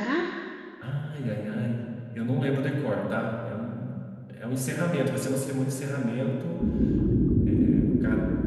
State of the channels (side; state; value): both; identical; correlation 1.00